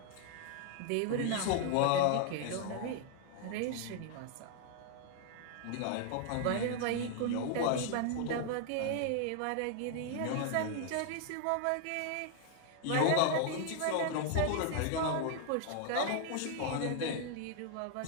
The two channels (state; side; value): different; both; correlation 0.00